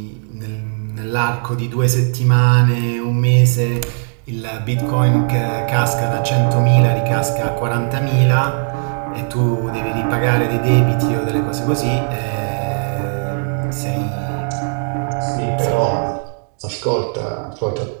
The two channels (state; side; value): silent; left; 57 dB below the other